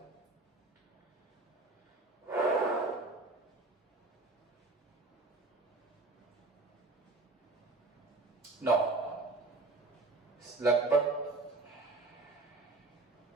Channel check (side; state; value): left; quieter; 3.2 dB